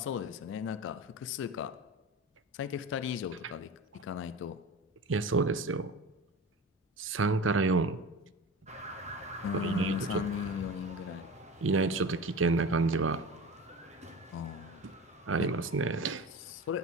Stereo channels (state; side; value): normal; both; correlation 0.32